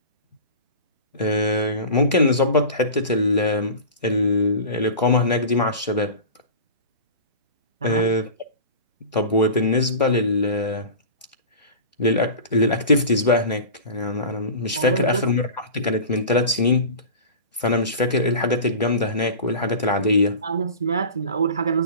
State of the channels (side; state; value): both; inverted; correlation -0.33